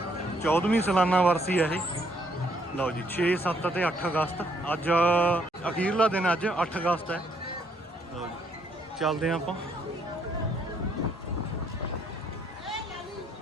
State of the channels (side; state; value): both; normal; correlation 0.69